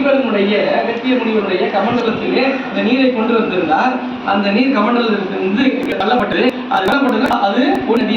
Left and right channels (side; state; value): both; identical; correlation 1.00